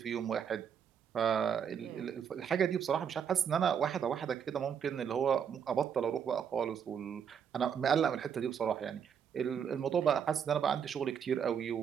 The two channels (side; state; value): left; quieter; 7.7 dB